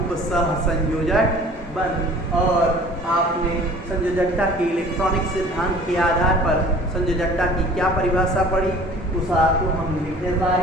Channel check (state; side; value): normal; both; correlation 0.47